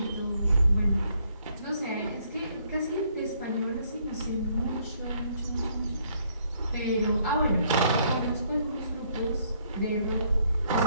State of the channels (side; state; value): both; inverted; correlation -0.68